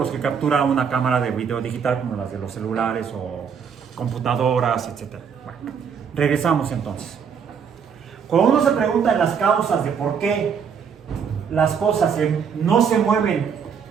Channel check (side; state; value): left; quieter; 6.9 dB